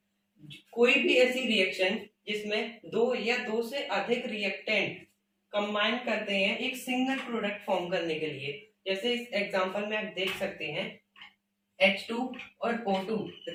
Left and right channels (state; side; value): identical; both; correlation 1.00